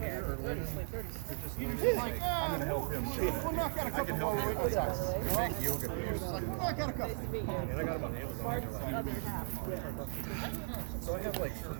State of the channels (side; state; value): left; silent; 53 dB below the other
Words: are linen. They're just linen. I'm gonna help him. We'll knock out a couple more with Wiggles house. Big yoga pants. We'll knock out a couple. And I got them on Amazon. So I have like 3